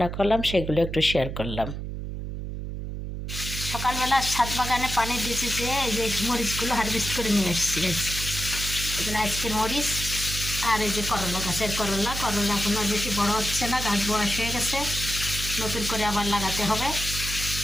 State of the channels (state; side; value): noise; right; hum, 6 dB below the sound